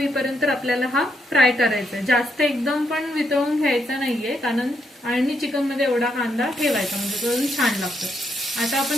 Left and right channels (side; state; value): both; normal; correlation 0.78